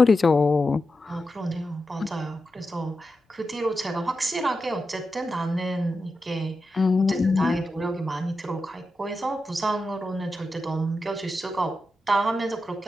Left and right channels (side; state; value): both; normal; correlation 0.90